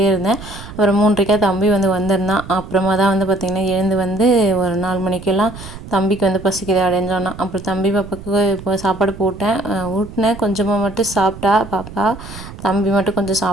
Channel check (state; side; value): noise; right; rumble, 14 dB below the sound